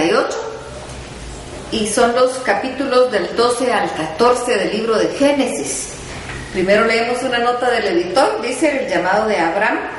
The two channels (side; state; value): both; identical; correlation 1.00